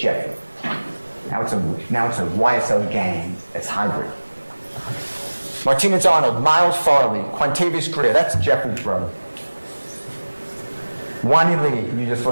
Now it's a YSL gang that's hybrid. Martinez-Arnold, Miles Farley, Quantavious Greer, that's Jeffrey's brother. Wani Lee, you just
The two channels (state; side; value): inverted; both; correlation -1.00